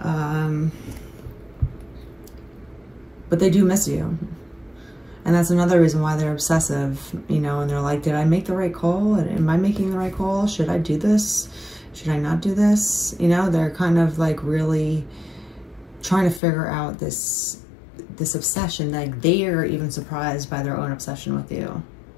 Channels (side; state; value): right; drops out; at 16.4 s